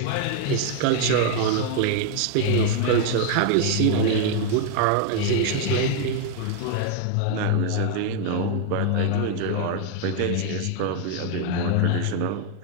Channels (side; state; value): both; different; correlation 0.00